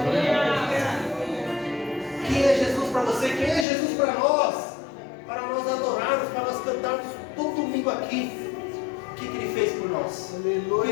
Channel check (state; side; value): drops out; right; at 3.7 s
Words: Quem é Jesus para você? Quem é Jesus para nós? Para nós adorarmos, para nós cantarmos todo domingo aqui. O que Ele fez por nós? O que Ele